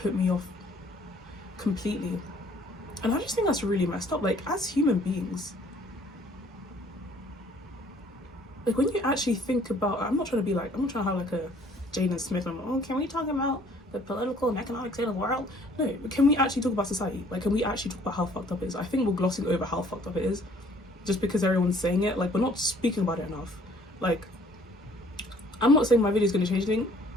me off completely. And I just think that's really messed up. Like, as human beings, like, when you actually think about, I'm not trying to have like a Jaden Smith, I'm like, oh, can we talk about the political and economic state of the world? No, but can we actually talk about society? Like, can we actually talk about how fucked up it is? I think we're glossing over how fucked up it is just because everyone's saying it. Like, we're not speaking about it enough. Like, I'm not saying my video is going to change anything.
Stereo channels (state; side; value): normal; both; correlation 0.58